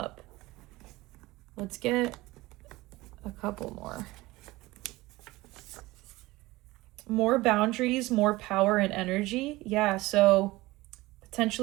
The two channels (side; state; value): left; quieter; 19.9 dB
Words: Let's get a couple more. More boundaries, more power and energy. Yeah, so